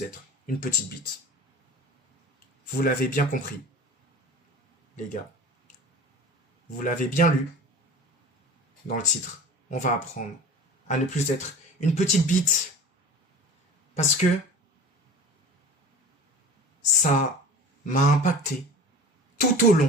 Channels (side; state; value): both; normal; correlation 0.38